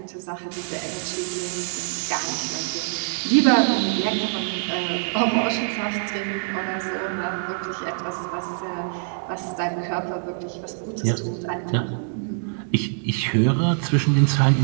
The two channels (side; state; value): left; silent; digital silence